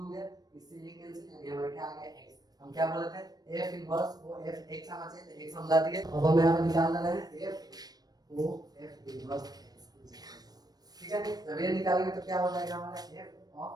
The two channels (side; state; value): left; late; 0.19 ms